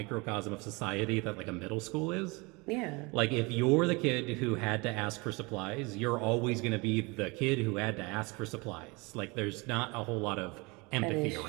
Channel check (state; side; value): quieter; left; 26.7 dB